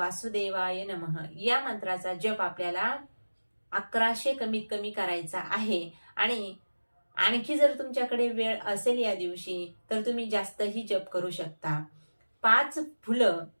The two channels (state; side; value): inverted; both; correlation -1.00